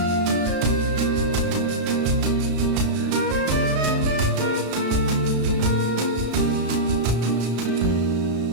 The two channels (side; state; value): left; late; 33 ms